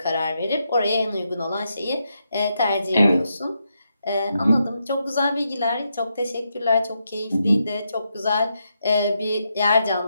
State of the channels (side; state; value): both; inverted; correlation -0.83